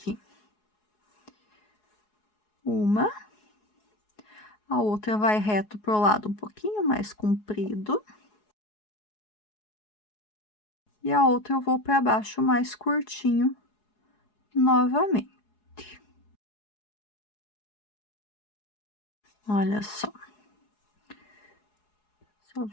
Uma, a outra vai reto pro lado um pouquinho mais comprido. E a outra eu vou para baixo mais curtinho novamente. Olha só. Só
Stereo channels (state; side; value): late; right; 4.7 ms